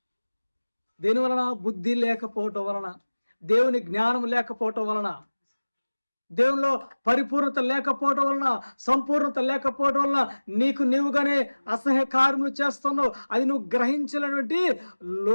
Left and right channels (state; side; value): inverted; both; correlation -1.00